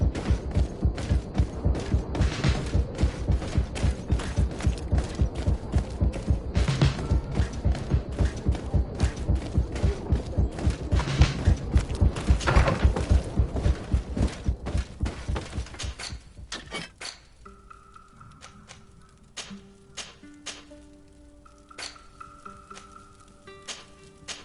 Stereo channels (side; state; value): both; identical; correlation 1.00